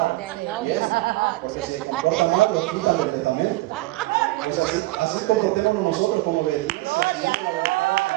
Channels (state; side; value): quieter; left; 19.6 dB